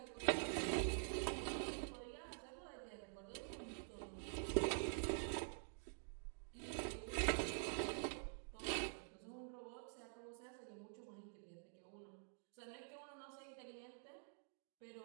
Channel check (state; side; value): silent; left; digital silence